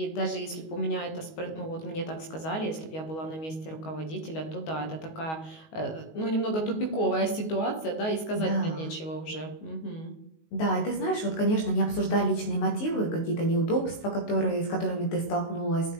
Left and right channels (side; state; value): right; late; 19 ms